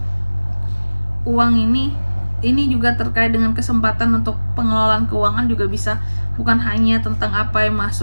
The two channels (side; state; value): both; inverted; correlation -1.00